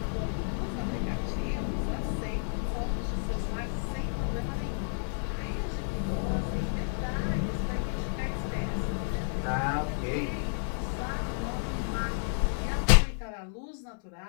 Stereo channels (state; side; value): silent; right; digital silence